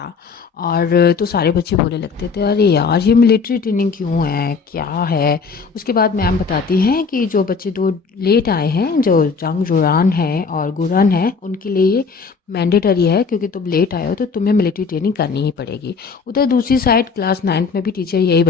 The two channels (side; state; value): right; quieter; 5.1 dB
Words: और तो सारे बच्चे बोलने लगते थे, अरे यार ये मिलिट्री ट्रेनिंग क्यों है, क्या है। उसके बाद मैम बताती हैं कि जो बच्चे 2 लेट आए हैं, जो जंग जुरान है और गुरन है, उनके लिए ये मैंडेटरी है, क्योंकि तुम लेट आए हो तो तुम्हें मिलिट्री ट्रेनिंग करनी ही पड़ेगी। उधर दूसरी साइड क्लास 9th में भी टीचर यही